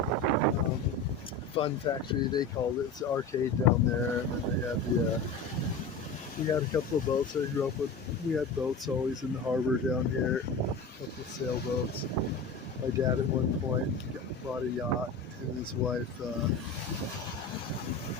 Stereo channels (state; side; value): quieter; right; 3.8 dB